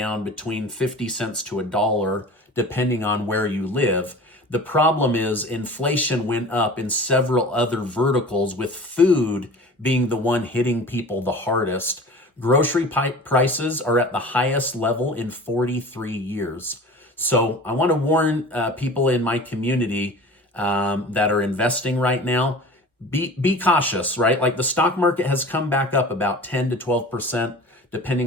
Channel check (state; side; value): normal; both; correlation 0.39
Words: between 50 cents to $1, depending on where you live. The problem is inflation went up in several other verticals, with food being the one hitting people the hardest. Grocery prices are at the highest level in 43 years. So I want to warn people in my community that are investing right now, be cautious, right? Like the stock market has come back up about 10 to 12%,